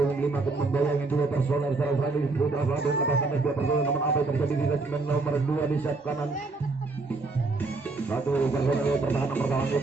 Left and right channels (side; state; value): left; quieter; 3.6 dB